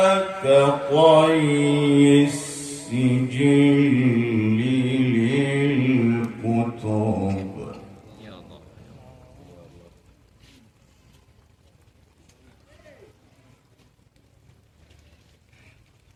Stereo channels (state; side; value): identical; both; correlation 1.00